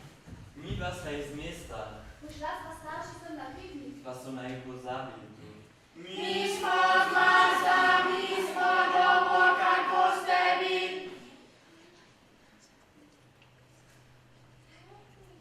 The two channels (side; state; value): both; identical; correlation 1.00